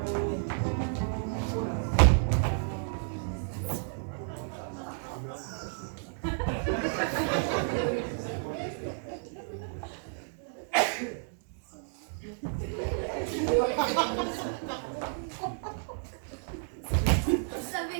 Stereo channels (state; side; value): silent; left; digital silence